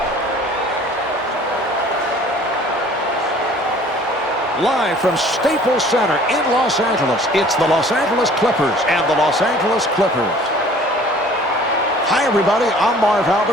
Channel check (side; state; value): both; normal; correlation 0.51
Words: Live from Staples Center in Los Angeles, it's the Los Angeles Clippers and the Los Angeles Clippers. Hi, everybody. I'm Marv